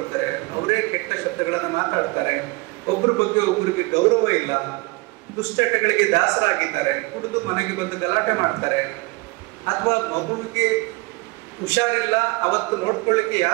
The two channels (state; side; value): quieter; left; 25.2 dB